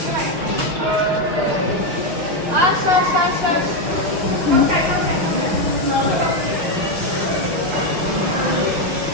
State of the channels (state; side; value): late; left; 6.0 ms